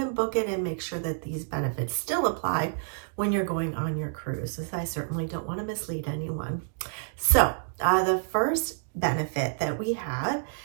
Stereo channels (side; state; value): left; silent; digital silence